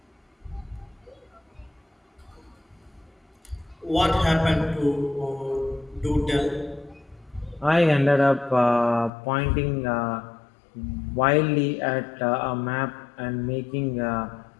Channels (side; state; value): right; drops out; at 9.1 s